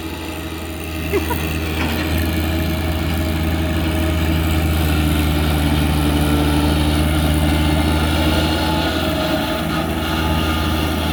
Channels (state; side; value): identical; both; correlation 1.00